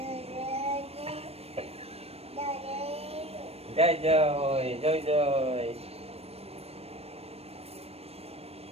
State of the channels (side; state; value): left; late; 0.29 ms